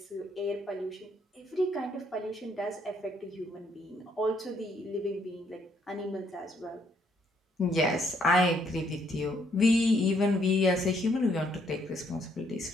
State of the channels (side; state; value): both; normal; correlation 0.70